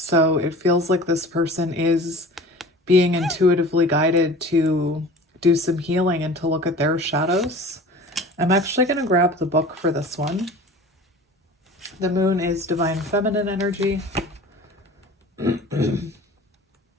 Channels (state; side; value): normal; both; correlation 0.41